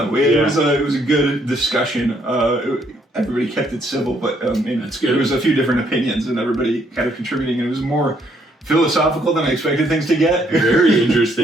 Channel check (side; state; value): both; normal; correlation 0.69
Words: It Yeah. was a good discussion. Everybody kept it civil, but That's good. There was a few different opinions and everybody kind of contributing, and it was more philosophical than I expected things to get. Very